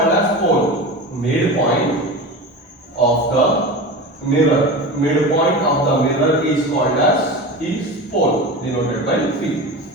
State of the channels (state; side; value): normal; both; correlation 0.29